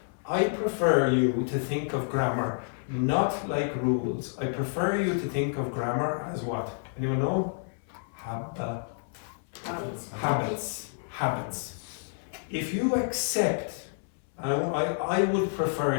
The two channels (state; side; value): silent; right; 58 dB below the other